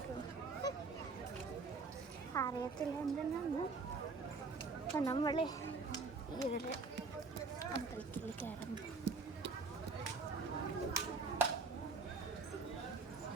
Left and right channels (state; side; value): quieter; left; 4.3 dB